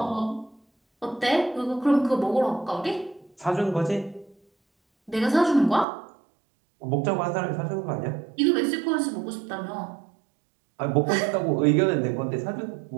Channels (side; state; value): left; drops out; at 5.9 s